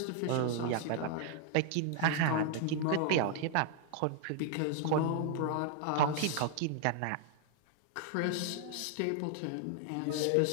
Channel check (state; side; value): different; both; correlation 0.00